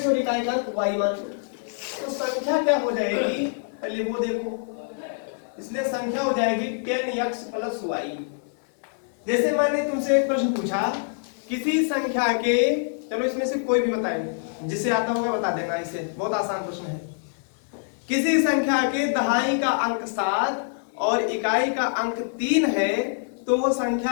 और इकाई का अंक y मान। तो संख्या क्या हो जाएगी पहले वो देखो। इसलिए संख्या हो जाएगी 10x + y। जैसे मैंने तुमसे एक प्रश्न पूछा, किसी संख्या के, चलो इसमें से कोई भी बताएंगे, जिसे आता होगा बता देना। इसे बहुत आसान प्रश्न है। किसी संख्या के दहाई का अंक 7 और इकाई का अंक 3 है तो वो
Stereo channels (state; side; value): silent; right; digital silence